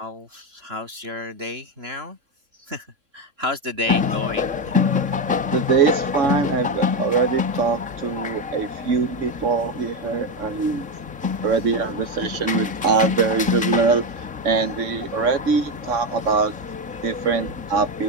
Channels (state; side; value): late; left; 3.6 ms